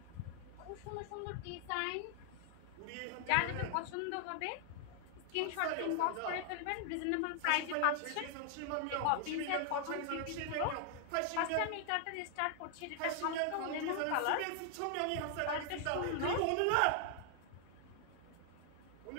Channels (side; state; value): both; different; correlation 0.00